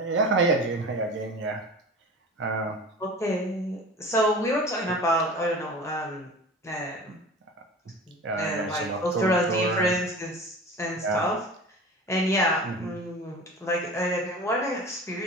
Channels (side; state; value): both; normal; correlation 0.37